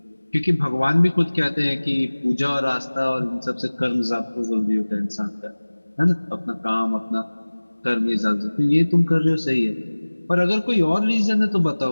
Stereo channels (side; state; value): both; inverted; correlation -1.00